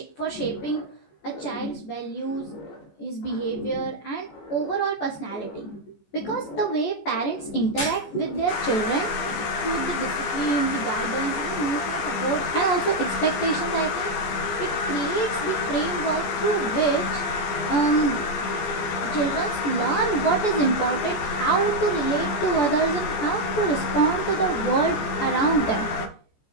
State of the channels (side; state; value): right; late; 14 ms